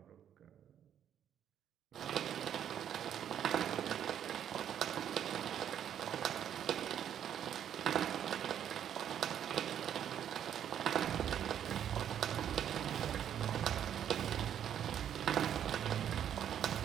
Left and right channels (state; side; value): quieter; left; 9.6 dB